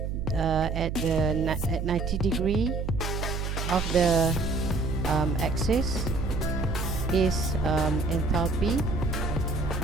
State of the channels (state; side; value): noise; right; hum, 3 dB below the sound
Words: 90 degree of the axis is enthalpy,